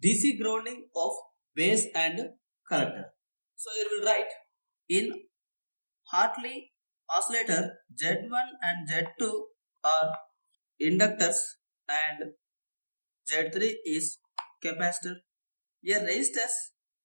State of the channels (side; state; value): both; inverted; correlation -1.00